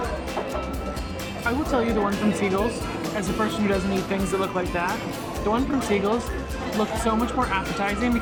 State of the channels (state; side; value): identical; both; correlation 1.00